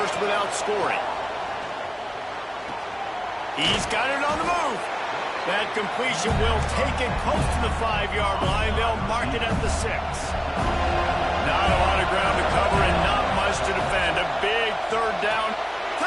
without scoring. He's got it on the move. That completion will take it close to the 5-yard line. They'll mark it at the 6. Not a lot of ground to cover and not much to defend. A big 3rd down.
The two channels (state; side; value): identical; both; correlation 1.00